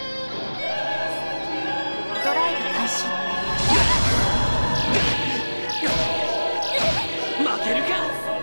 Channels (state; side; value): inverted; both; correlation -1.00